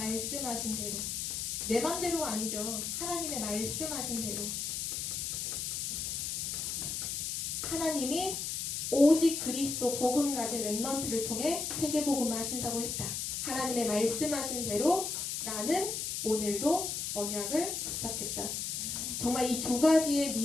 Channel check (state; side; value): noise; left; hiss, 2 dB below the sound